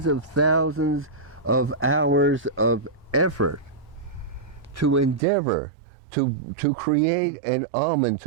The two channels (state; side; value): drops out; left; at 5.2 s